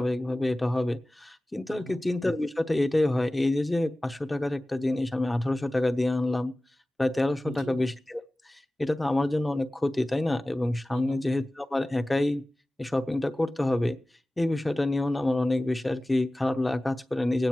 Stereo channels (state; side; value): normal; both; correlation 0.97